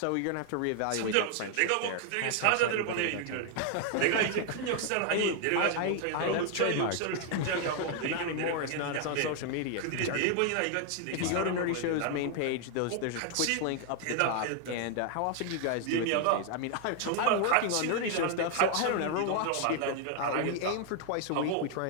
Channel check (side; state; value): both; different; correlation 0.00